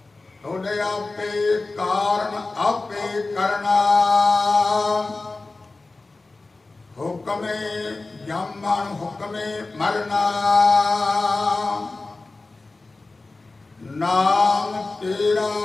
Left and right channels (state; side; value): quieter; right; 3.4 dB